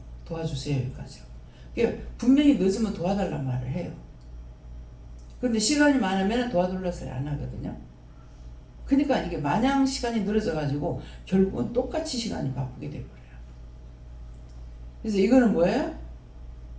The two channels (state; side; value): identical; both; correlation 1.00